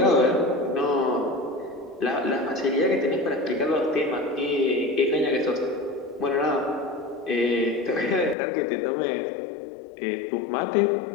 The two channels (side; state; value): right; drops out; at 8.3 s